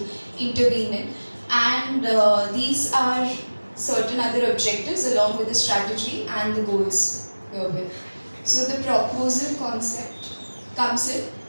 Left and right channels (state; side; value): inverted; both; correlation -1.00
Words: intervene in. And these are certain other objectives along with the strategy and the goals herewith. So the proposal concept comes in.